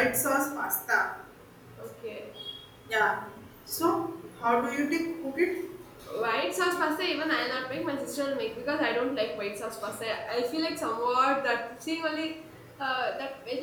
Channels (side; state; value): both; identical; correlation 1.00